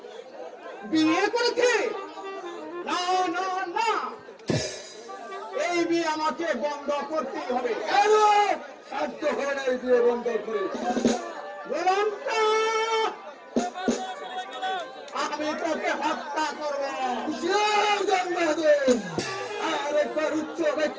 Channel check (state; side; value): identical; both; correlation 1.00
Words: বিয়ে করেছে? না না না, এই বিয়ে আমাকে বন্ধ করতেই হবে। সাধ্য হয় না এই বিয়ে বন্ধ করে। আমি তোকে হত্যা করবো। আর একবার উচ্চ